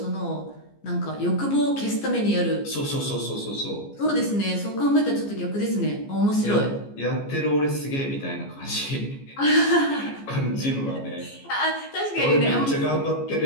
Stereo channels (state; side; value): late; right; 15 ms